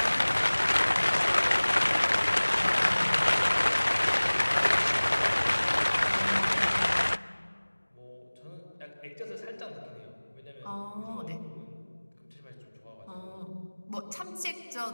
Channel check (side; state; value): both; inverted; correlation -1.00